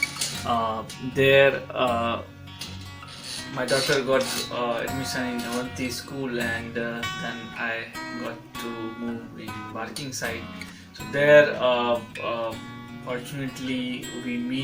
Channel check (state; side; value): identical; both; correlation 1.00